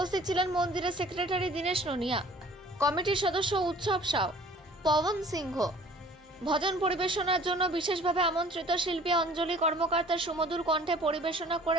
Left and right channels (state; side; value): normal; both; correlation 0.51